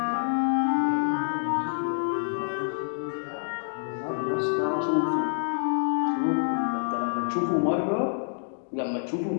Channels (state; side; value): silent; right; digital silence